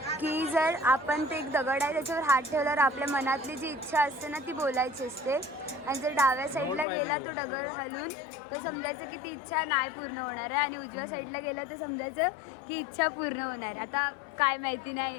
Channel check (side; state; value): right; drops out; at 6.9 s